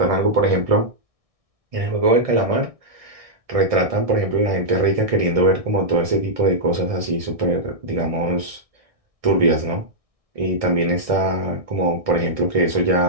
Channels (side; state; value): left; late; 1.6 ms